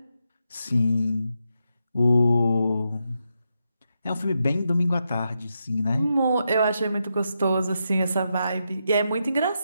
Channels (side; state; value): both; inverted; correlation -0.85